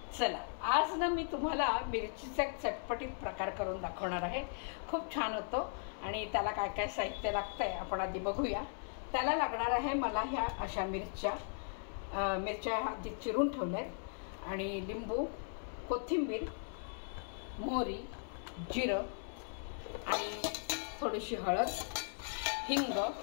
चला, आज ना मी तुम्हाला मिरचीचा एक चटपटीत प्रकार करून दाखवणार आहे। खूप छान होतो आणि त्याला काय काय साहित्य लागतंय आपण आधी बघूया। त्याला लागणार आहे मला ह्या अशा मिरच्या आधी चिरून ठेवल्यात आणि लिंबू, कोथिंबीर, मोहरी, जिरं आणि थोडीशी हळद, हिंग,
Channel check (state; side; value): silent; right; 53 dB below the other